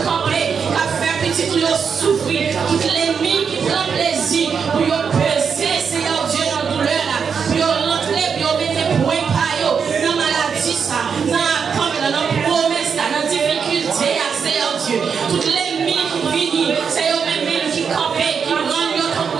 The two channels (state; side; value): quieter; left; 6.4 dB